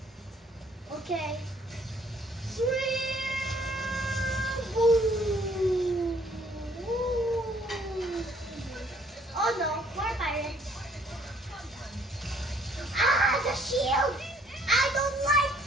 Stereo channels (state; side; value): normal; both; correlation 0.62